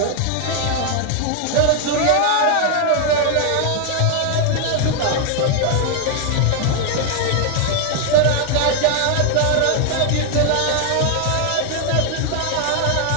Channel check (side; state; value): both; different; correlation 0.00